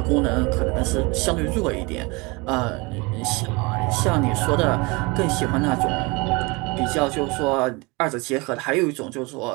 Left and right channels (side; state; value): left; quieter; 26.5 dB